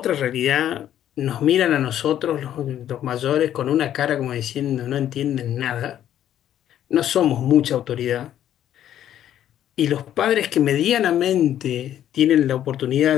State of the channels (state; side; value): quieter; right; 11.1 dB